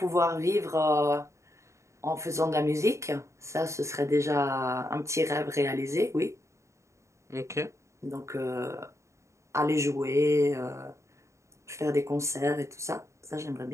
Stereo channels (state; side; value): late; left; 0.14 ms